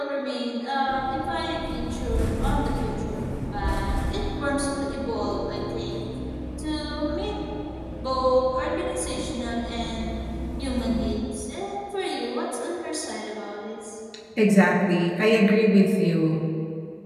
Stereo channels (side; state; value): both; identical; correlation 1.00